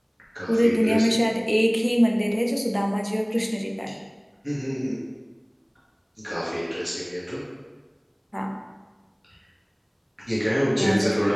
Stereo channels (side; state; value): both; identical; correlation 1.00